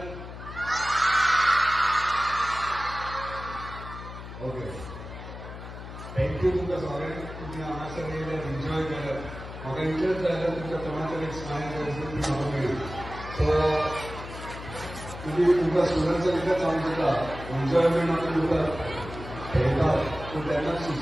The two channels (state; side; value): noise; left; hum, 11 dB below the sound